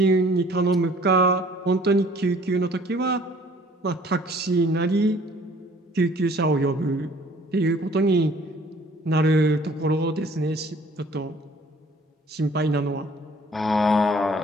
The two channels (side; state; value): both; normal; correlation 0.55